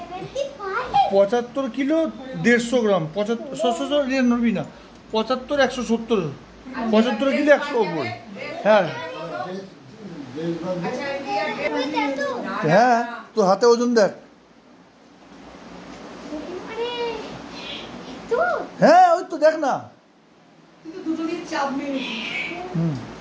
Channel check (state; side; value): identical; both; correlation 1.00